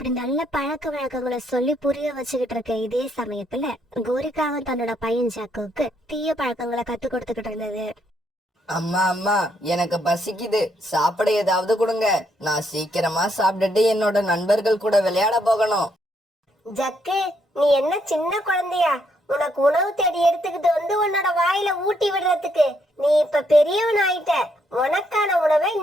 நல்ல பழக்க வழக்கங்களை சொல்லி புரிய வச்சுக்கிட்டு இருக்க இதே சமயத்துல கோரிக்காவும் தன்னோட பையன் ஜாக்குவுக்கு தீய பழக்கங்களை கத்து கொடுத்துக்கிட்டு இருந்தது. அம்மா அம்மா, எனக்கு பசிக்குது, சாப்பிட ஏதாவது கொடுங்க. நான் சீக்கிரமா சாப்பிட்டுட்டு என்னோட நண்பர்கள் கூட விளையாட போகணும். ஜக்கு, நீ என்ன சின்ன குழந்தையா? உனக்கு உணவு தேடி எடுத்துக்கிட்டு வந்து உன்னோட வாயில ஊட்டி விடுறதுக்கு. நீ இப்ப பெரியவன் ஆயிட்ட. உனக்கான உணவை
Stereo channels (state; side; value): normal; both; correlation 0.74